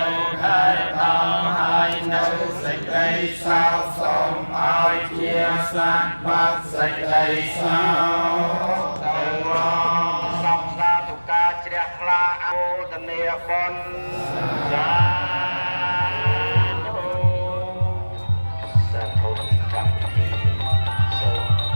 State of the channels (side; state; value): both; inverted; correlation -1.00